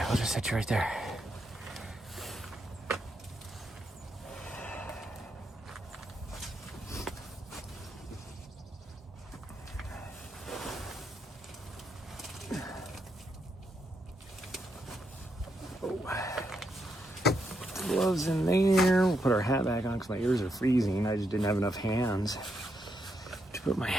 we'll just set you right there. gloves in there. We'll put our hat back on because my ears are freezing. I just didn't have enough hands to put my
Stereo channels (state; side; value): normal; both; correlation 0.80